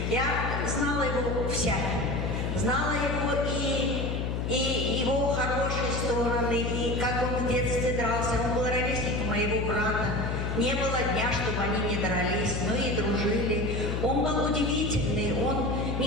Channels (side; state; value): left; noise; hum, 1 dB below the sound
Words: Я знала его всяким. Знала его и его хорошие стороны, и как он в детстве дрался. Он был ровесник моего брата. Не было дня, чтобы они не дрались, но и дружили. Он был удивительный, он